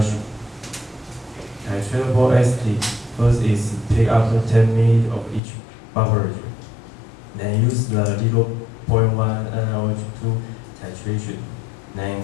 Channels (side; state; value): right; drops out; at 5.4 s